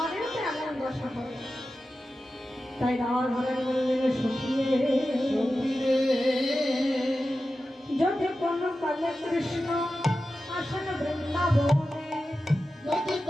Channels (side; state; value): both; normal; correlation 0.93